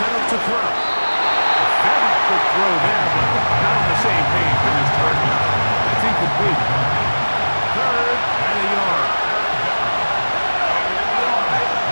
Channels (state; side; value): inverted; both; correlation -1.00